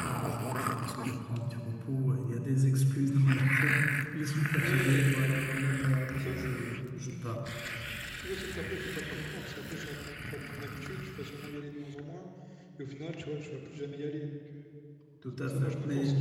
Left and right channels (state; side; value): identical; both; correlation 1.00